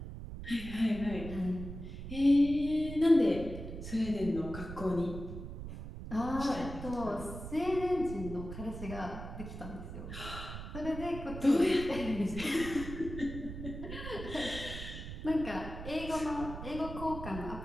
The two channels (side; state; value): right; noise; rumble, 9 dB below the sound